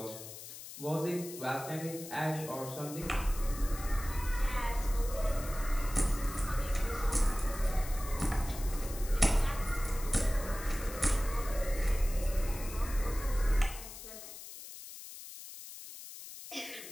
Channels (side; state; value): left; noise; hiss, 13 dB below the sound